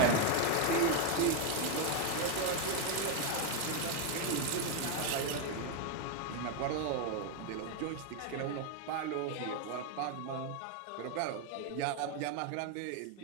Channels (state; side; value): different; both; correlation 0.01